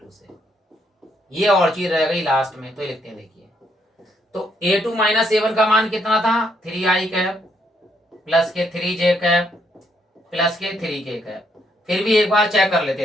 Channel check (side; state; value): both; normal; correlation 0.73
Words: से। ये और चीज रह गई लास्ट में, तो ये लिखते हैं। देखिए तो A2 माइनस A1 का मान कितना था, 3i कैप प्लस के 3j कैप प्लस के 3k कैप। फिर भी एक बार चेक कर लेते